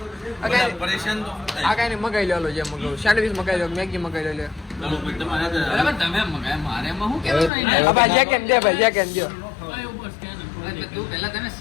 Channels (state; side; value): drops out; right; at 7.5 s